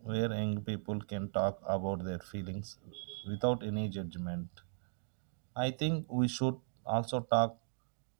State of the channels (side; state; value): left; silent; digital silence